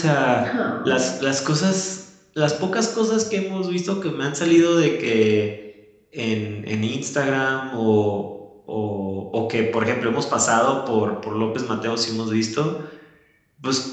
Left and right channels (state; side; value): identical; both; correlation 1.00